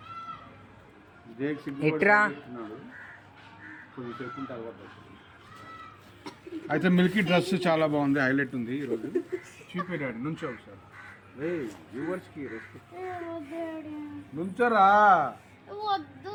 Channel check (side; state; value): both; identical; correlation 1.00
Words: జేక్ సిగ్గుపడి కొద్దిసేపు ఉంటే అలవాటు. అయితే మిల్కీ డ్రెస్ చాలా బాగుంది, హైలైట్ ఉంది ఈరోజు. చూపెట్టాడు నుంచో ఒకసారి. రే వ్యూవర్స్కి రెస్పెక్ట్ నుంచోరా.